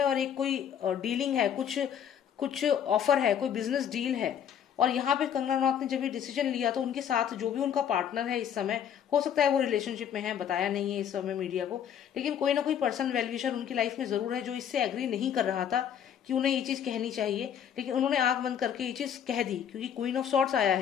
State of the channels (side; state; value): right; quieter; 8.9 dB